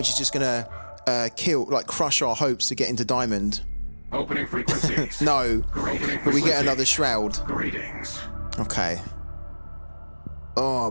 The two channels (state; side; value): inverted; both; correlation -1.00